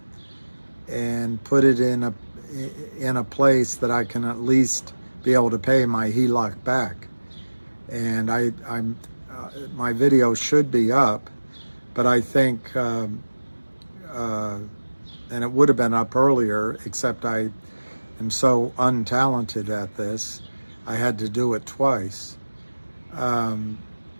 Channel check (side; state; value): both; inverted; correlation -1.00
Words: and put it in a place that I can at least be able to pay my HELOC back. And my video should be up, but I think, and it would have been up earlier, except I am so untalented at this, I had to do it twice.